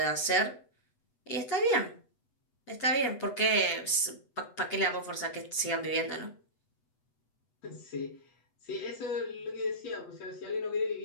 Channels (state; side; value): late; right; 8.1 ms